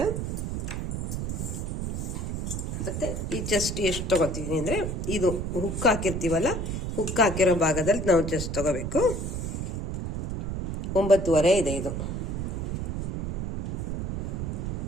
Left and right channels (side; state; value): right; noise; rumble, 2 dB below the sound